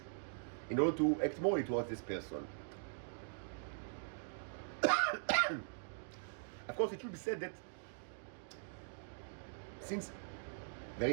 in order to act morally towards this person. Of course, it should be said that since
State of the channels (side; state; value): left; silent; digital silence